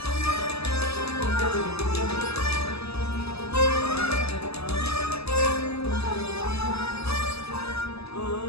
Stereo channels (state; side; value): late; right; 0.79 ms